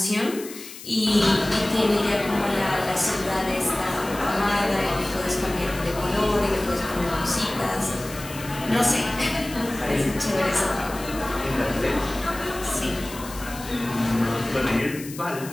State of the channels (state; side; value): noise; left; hiss, 14 dB below the sound